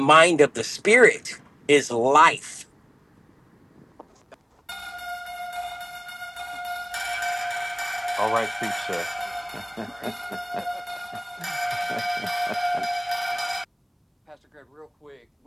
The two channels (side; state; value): both; identical; correlation 1.00